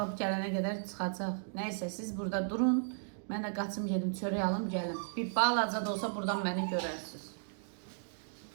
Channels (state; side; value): silent; left; digital silence